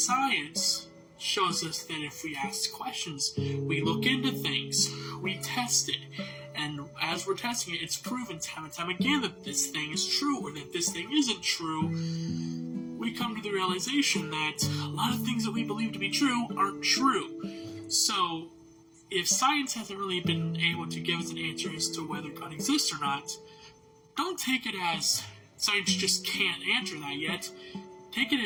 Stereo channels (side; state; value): both; identical; correlation 1.00